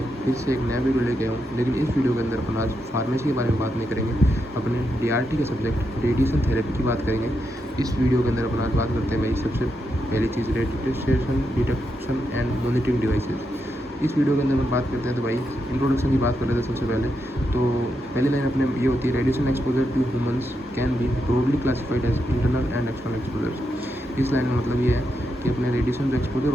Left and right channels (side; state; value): both; normal; correlation 0.84